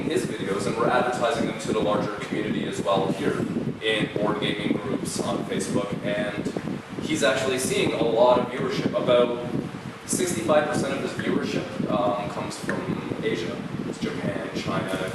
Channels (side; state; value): both; identical; correlation 1.00